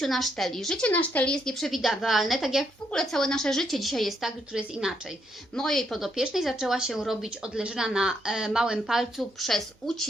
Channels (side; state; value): both; normal; correlation 0.75